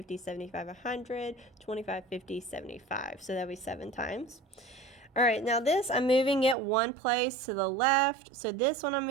75, 100, 25, 50, 75. So that'll be 7 times. All right, now this, I'm moving it one place to the left. So this one I'm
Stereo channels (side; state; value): left; drops out; at 6.6 s